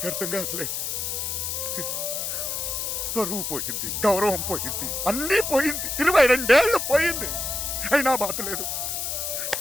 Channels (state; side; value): noise; left; hiss, 2 dB below the sound